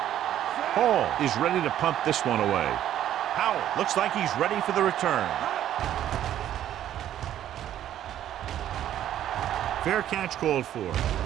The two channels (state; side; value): quieter; left; 11.5 dB